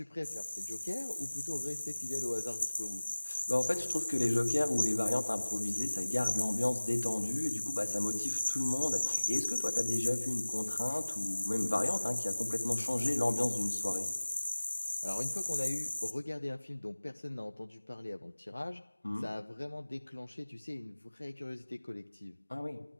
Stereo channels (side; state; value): both; inverted; correlation -1.00